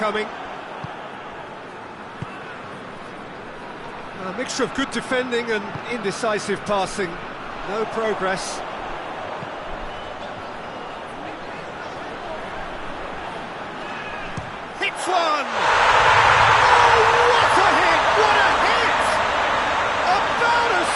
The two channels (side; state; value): both; identical; correlation 1.00